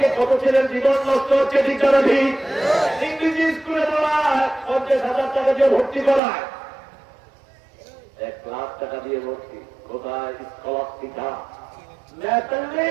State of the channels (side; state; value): left; drops out; at 6.2 s